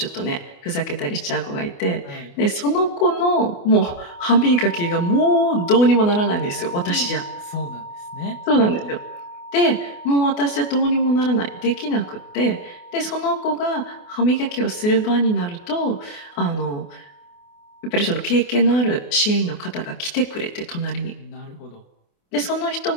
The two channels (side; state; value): right; late; 28 ms